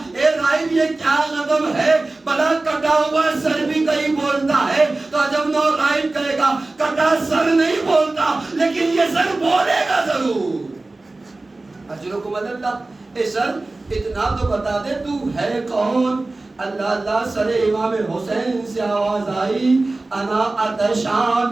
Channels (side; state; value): left; quieter; 3.1 dB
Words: اے راہب یہ کیا غضب ہے، بلا کٹا ہوا سر بھی کہیں بولتا ہے، تو جب نو راہب کہے گا کٹا سر نہیں بولتا لیکن یہ سر بولے گا ضرور۔ اجرکم اللہ، اے سر اتنا تو بتا دے تو ہے کون؟ اللہ اللہ، سر امام حسین سے آواز آئی انا